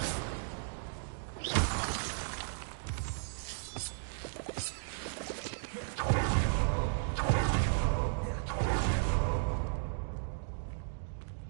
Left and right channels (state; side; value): silent; left; digital silence